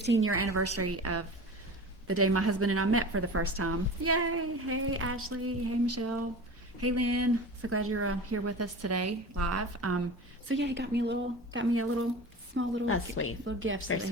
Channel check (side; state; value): both; normal; correlation 0.34